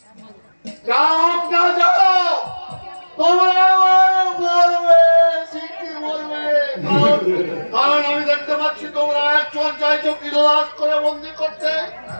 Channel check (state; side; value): inverted; both; correlation -1.00